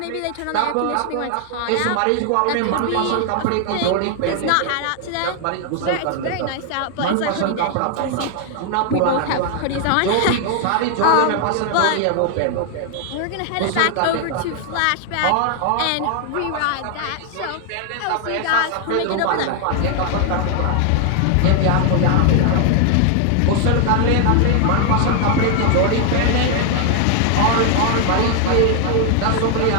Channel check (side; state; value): both; different; correlation 0.00